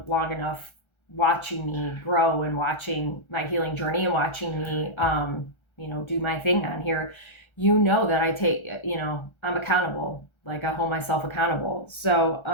long enough watching me grow and watching my healing journey and watching me, do my thing on here, you know that I take, I'm accountable. Like I hold myself accountable. So,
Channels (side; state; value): right; late; 1.3 ms